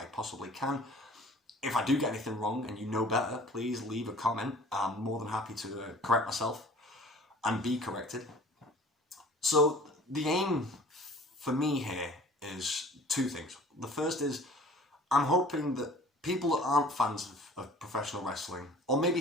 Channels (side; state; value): both; normal; correlation 0.48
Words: possibly can. If I do get anything wrong and you know better, please leave a comment. I'm more than happy to correct myself and be corrected. So the aim for me here is two things. The first is I'm hoping that people that aren't fans of professional wrestling, or maybe